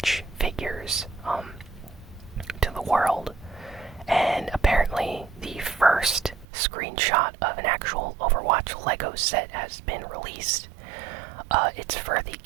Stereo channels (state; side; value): drops out; left; at 6.5 s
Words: figures to the world. And apparently the first screenshot of an actual Overwatch Lego set has been released. It's for the